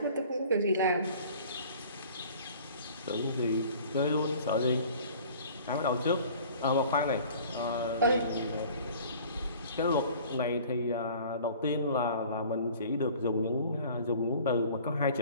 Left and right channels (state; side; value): inverted; both; correlation -0.48